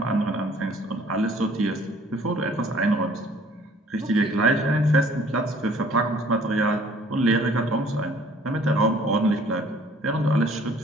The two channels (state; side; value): normal; both; correlation 0.56